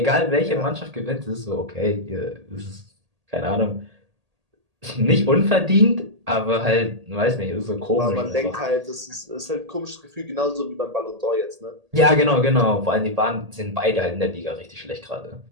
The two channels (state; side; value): late; left; 1.8 ms